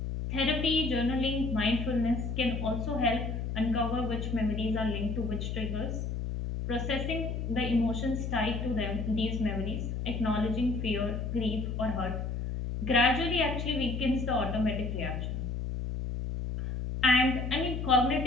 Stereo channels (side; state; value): left; noise; hum, 3 dB below the sound